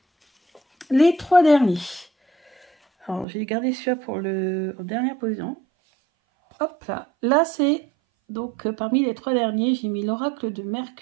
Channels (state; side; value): drops out; left; at 3.2 s